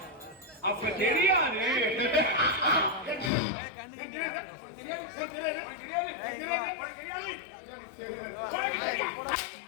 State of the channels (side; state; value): right; drops out; at 3.3 s